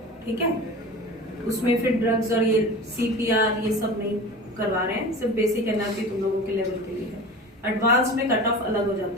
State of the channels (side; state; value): both; normal; correlation 0.34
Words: ठीक है? उसमें फिर ड्रग्स और ये CPR ये सब नहीं करवा रहे हैं, सिर्फ बेसिक एनर्जी तुम लोगों के लेवल के लिए है। एडवांस में कट ऑफ अलग हो